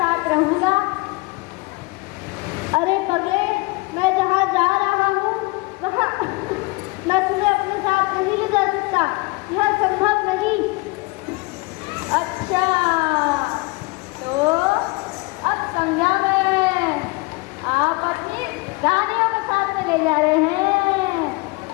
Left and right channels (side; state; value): right; quieter; 25.4 dB